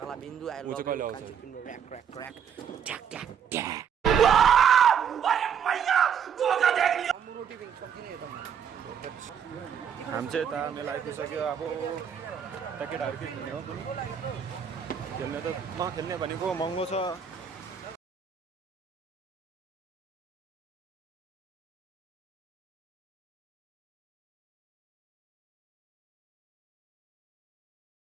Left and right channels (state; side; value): quieter; left; 8.0 dB